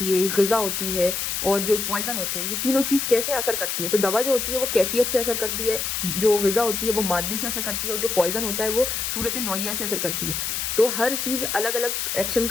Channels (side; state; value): left; noise; hiss, 2 dB below the sound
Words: है, ग़िज़ा होती है और जो पॉइजन होते हैं, ये तीनों चीज़ कैसे असर करती है। तो दवा जो होती है वो कैफियत से असर करती है, जो ग़िज़ा होती है वो मादे से असर करती है, और जो पॉइजन होता है वो सूरत नौइया से असर करती है। तो हर चीज़ अलग अलग एक्शन